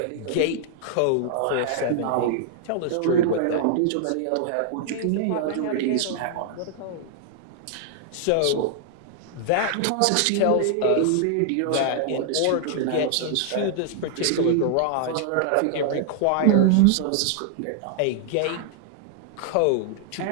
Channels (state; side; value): different; both; correlation -0.01